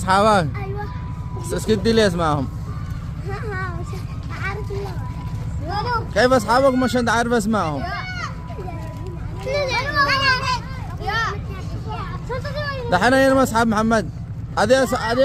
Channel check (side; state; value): both; identical; correlation 1.00